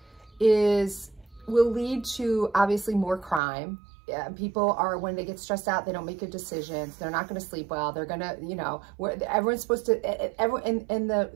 will lead to obviously more crime. people are, when they get stressed out, they don't make good decisions. They're not going to sleep well. They're going to, you know, everyone's supposed to, and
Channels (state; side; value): drops out; left; at 3.4 s